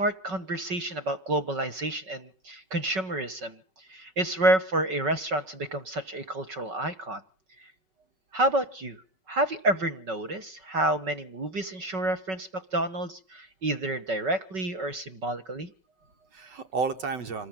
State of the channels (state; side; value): late; left; 5.3 ms